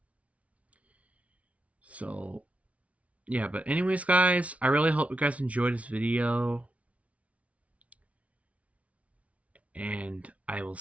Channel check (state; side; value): late; left; 0.065 ms